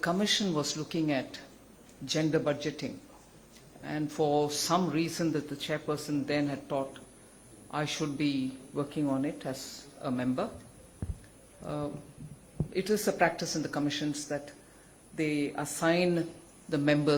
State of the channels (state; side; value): identical; both; correlation 1.00